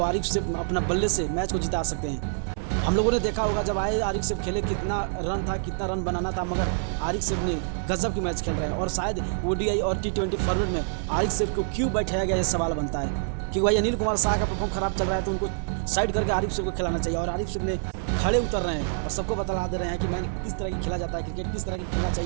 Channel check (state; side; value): silent; left; 61 dB below the other